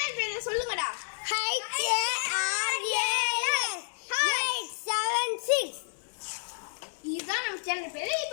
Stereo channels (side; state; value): right; silent; 58 dB below the other